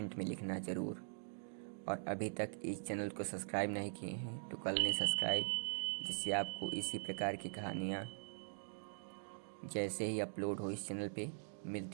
में लिखना ज़रूर। और अभी तक इस चैनल को सब्सक्राइब नहीं किए हैं तो कर लें सब्सक्राइब, जिससे आपको इसी प्रकार की कहानियाँ जैसे ही अपलोड हो इस चैनल पे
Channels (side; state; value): left; silent; digital silence